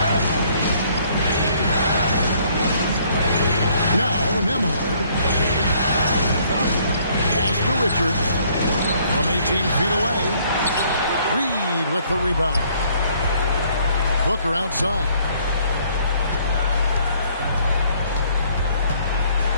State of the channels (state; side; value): inverted; both; correlation -0.63